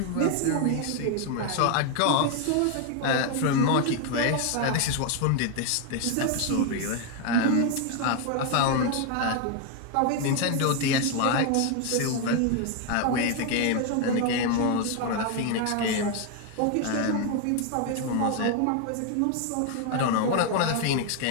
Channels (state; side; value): different; both; correlation 0.01